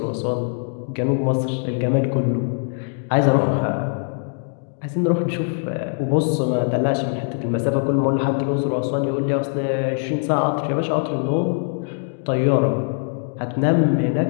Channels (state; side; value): silent; right; 64 dB below the other